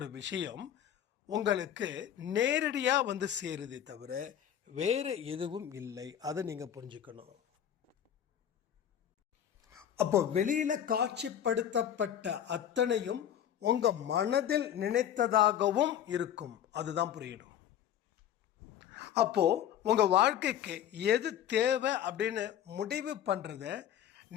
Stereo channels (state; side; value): quieter; right; 10.1 dB